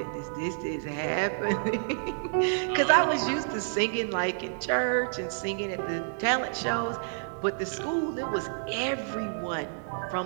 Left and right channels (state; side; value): silent; left; digital silence